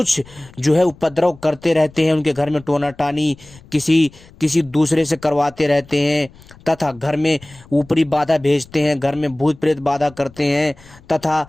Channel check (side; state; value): left; noise; rumble, 24 dB below the sound